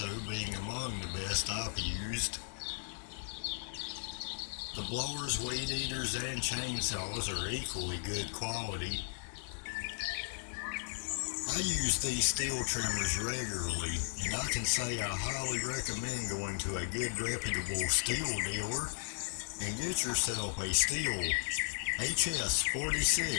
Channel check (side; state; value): right; silent; digital silence